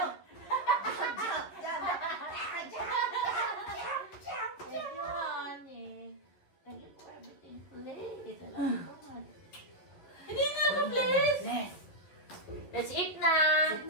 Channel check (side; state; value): right; late; 11 ms